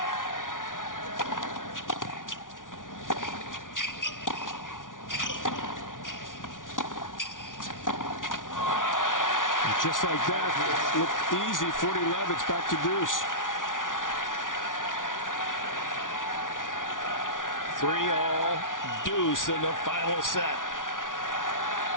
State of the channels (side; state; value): right; late; 0.88 ms